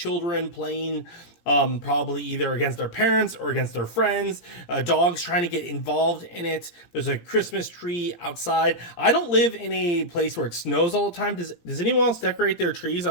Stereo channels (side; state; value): right; late; 17 ms